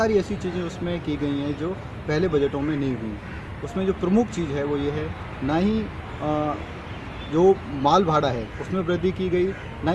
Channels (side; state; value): both; identical; correlation 1.00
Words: ऐसी चीज़ें उसमें की गई हैं जो पहले बजटों में नहीं हुई। उसमें जो प्रमुख चीज़ है वो ये है, ना ही जो माल भाड़ा है उसमें वृद्धि की गई, ना